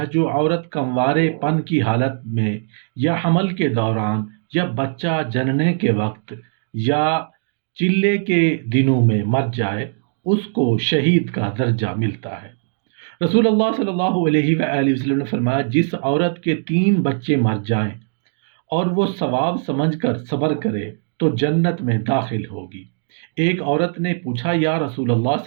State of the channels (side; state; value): left; silent; digital silence